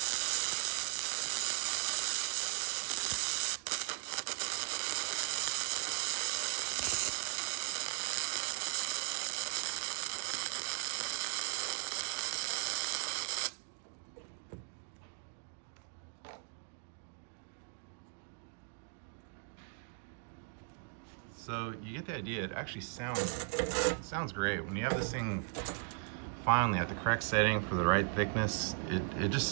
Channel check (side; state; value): left; silent; 53 dB below the other